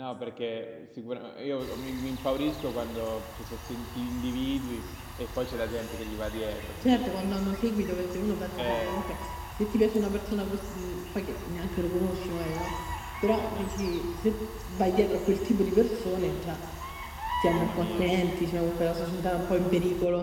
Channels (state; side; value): identical; both; correlation 1.00